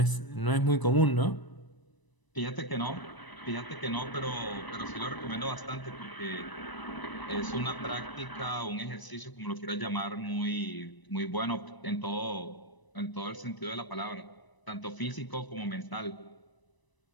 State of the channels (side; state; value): right; late; 1.0 ms